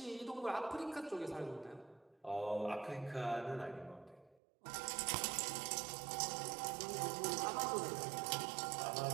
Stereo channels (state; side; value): drops out; left; at 4.4 s